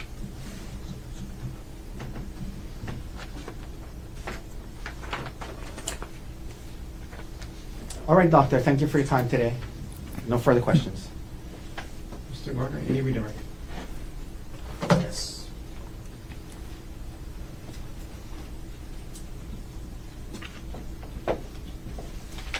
All right, doctor, thank you for your time today. No further questions. Mr. Gardner, any redirect? Yes.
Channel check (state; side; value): identical; both; correlation 1.00